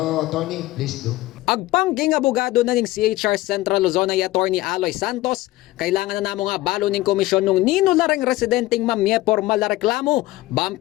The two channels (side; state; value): right; quieter; 17.7 dB